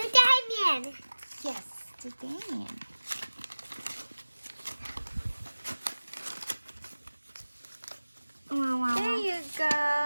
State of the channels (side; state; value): both; inverted; correlation -1.00